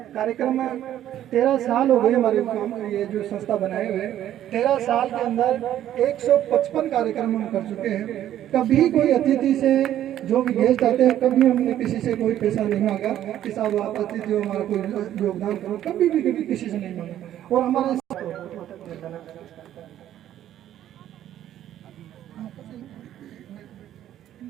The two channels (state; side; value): quieter; left; 11.8 dB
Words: कार्यक्रम में 13 साल हो गए हमारे ये जो संस्था बनाए हुए, 13 साल के अंदर 155 कार्यक्रम हम कर चुके हैं। कभी कोई अतिथि से, जो भी गेस्ट आते हैं, कभी हमने किसी से कोई पैसा नहीं मांगा कि साहब आप अतिथि हो, हमारा कोई योगदान करो, कभी भी किसी से नहीं मांगा। और हमारे